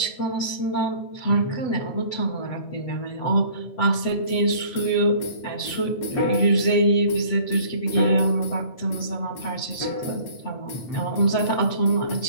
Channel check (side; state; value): right; late; 8.0 ms